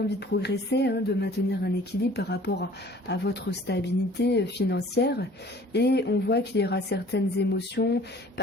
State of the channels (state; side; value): normal; both; correlation 0.51